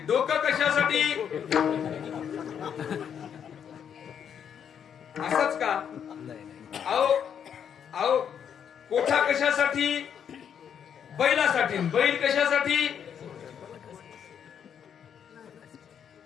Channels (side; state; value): right; quieter; 8.2 dB